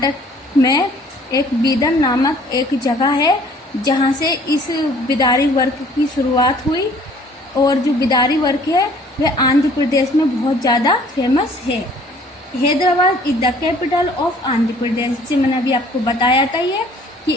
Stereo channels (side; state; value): both; normal; correlation 0.55